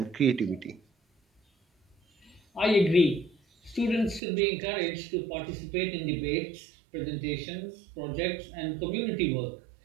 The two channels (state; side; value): drops out; left; at 4.2 s